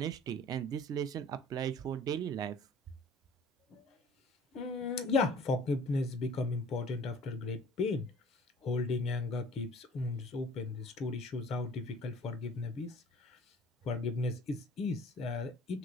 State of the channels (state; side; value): normal; both; correlation 0.50